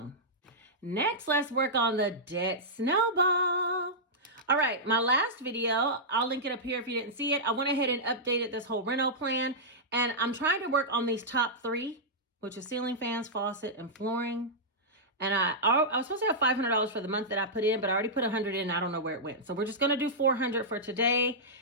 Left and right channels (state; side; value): normal; both; correlation -0.11